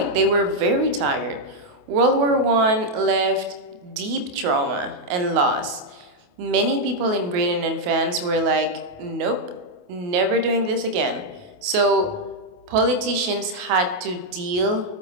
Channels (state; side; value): late; left; 28 ms